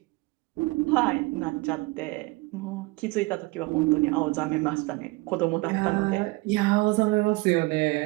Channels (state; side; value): quieter; left; 23.3 dB